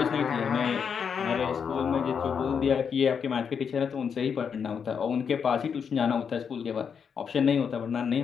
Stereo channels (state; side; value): quieter; right; 6.8 dB